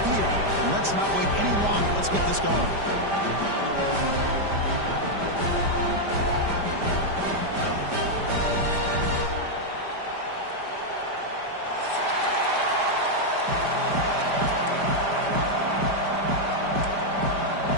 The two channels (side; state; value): left; late; 5.0 ms